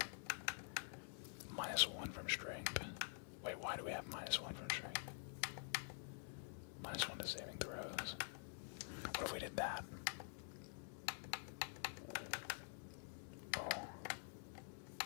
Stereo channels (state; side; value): silent; right; digital silence